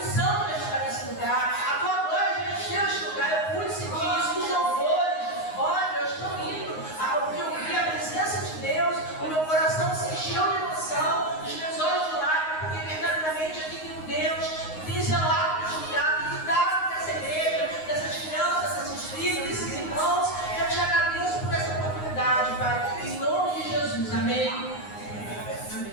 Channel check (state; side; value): late; right; 9.6 ms